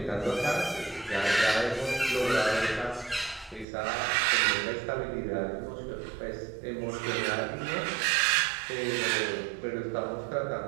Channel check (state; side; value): drops out; left; at 3.7 s